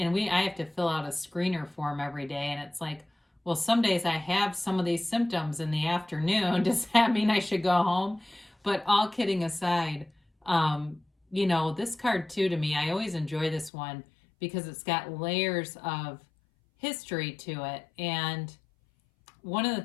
have to fill out a screener form every day, and it's like, well, some days I have some of these symptoms in the afternoon. Does that mean I should go home? But all kidding aside, this card too, to me, I always enjoy this one because it's got layers of history to it. And one of the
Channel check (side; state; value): right; drops out; at 13.7 s